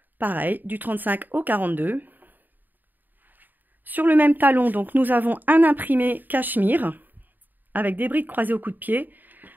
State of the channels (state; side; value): late; left; 0.089 ms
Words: Pareil, du 35 au 42. Sur le même talon, donc, nous avons un imprimé cachemire avec des brides croisées au coup de pied